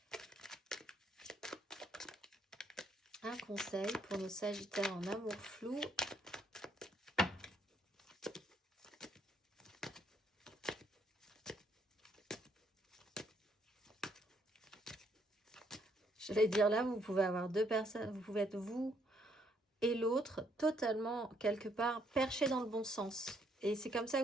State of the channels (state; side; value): normal; both; correlation 0.70